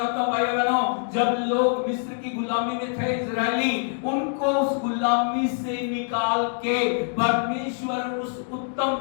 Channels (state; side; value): silent; right; 62 dB below the other